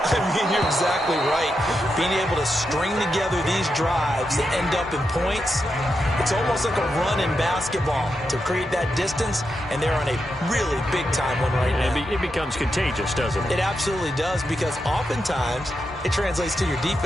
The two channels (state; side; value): normal; both; correlation 0.86